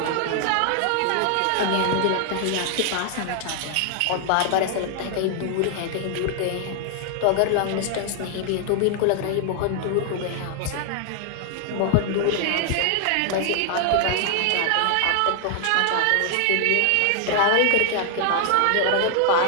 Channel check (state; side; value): different; both; correlation 0.00